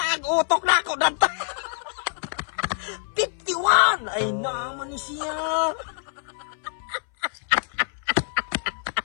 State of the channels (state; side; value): silent; right; 60 dB below the other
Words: ang utok na ako ng 51. Ay naman ni siya.